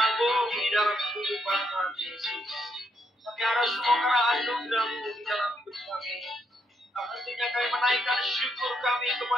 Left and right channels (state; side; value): normal; both; correlation 0.77